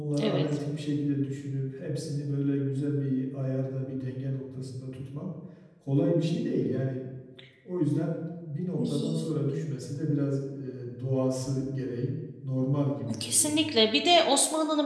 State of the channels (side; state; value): both; identical; correlation 1.00